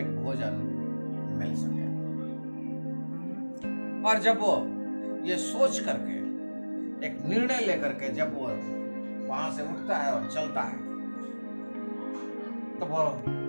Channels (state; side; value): inverted; both; correlation -1.00